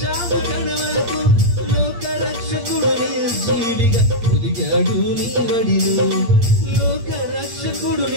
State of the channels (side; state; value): left; late; 8.6 ms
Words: కడ వరకు. లోక రక్షకుడు నిర్జీవిగా ఒదిగాడు నీ వడిలో. లోక రక్షకుడు